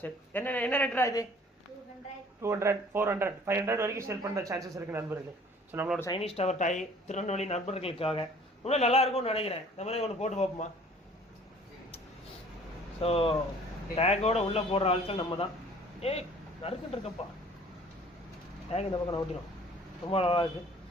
சரி, என்ன ரேட்டா இது? 200, 400, 500 வரைக்கும் சேல் பண்ணுற சான்சஸ் இருக்குது நண்பர்களே. ஸோ நம்மளோட சைனீஸ் டவர் டாய் திருநெல்வேலி நண்பர்களுக்காக இன்னும் நல்லா இருக்கும்னு நினைக்கிறேன். இந்த மாதிரி ஒன்று போட்டு பார்ப்போமா? ஸோ டேக்கோட உள்ளே போடுற ஆட்கள் நம்ம தான். நறுக்குன்னு இருக்கப்பா, டேக் இந்த பக்கம் ஓட்டிடும், ரொம்ப நல்லா இருக்குது.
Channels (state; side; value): normal; both; correlation 0.52